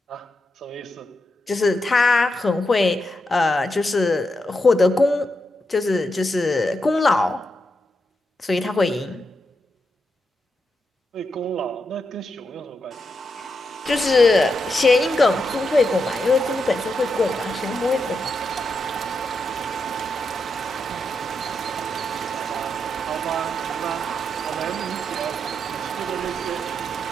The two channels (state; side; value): normal; both; correlation 0.85